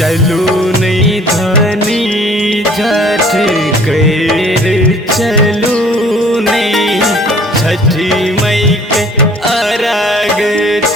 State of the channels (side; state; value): both; normal; correlation 0.54